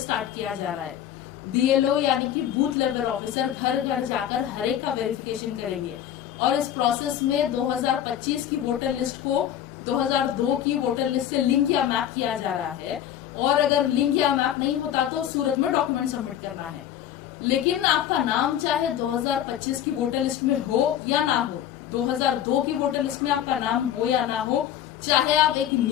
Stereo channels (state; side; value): quieter; right; 10.7 dB